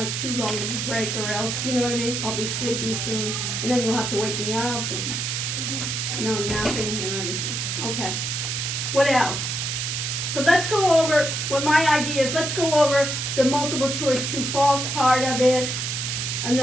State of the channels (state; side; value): noise; right; hiss, 2 dB below the sound